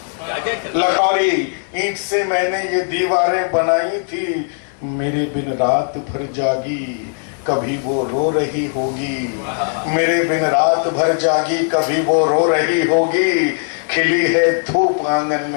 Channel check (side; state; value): right; silent; digital silence